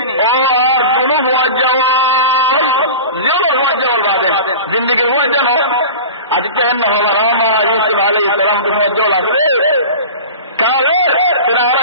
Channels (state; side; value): inverted; both; correlation -0.33